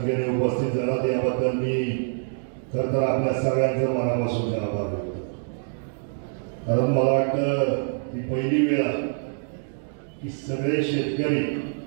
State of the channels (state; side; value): silent; left; digital silence